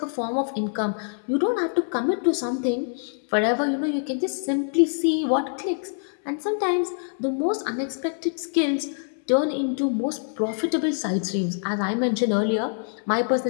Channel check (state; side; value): silent; right; 62 dB below the other